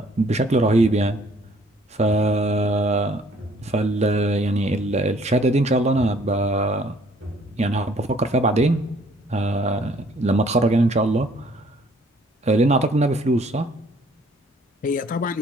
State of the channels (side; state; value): both; normal; correlation 0.60